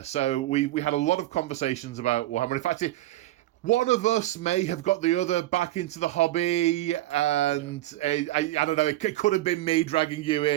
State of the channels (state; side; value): quieter; left; 16.1 dB